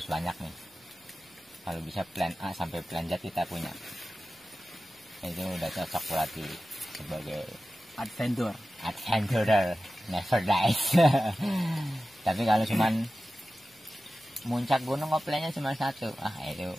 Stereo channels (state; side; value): normal; both; correlation 0.95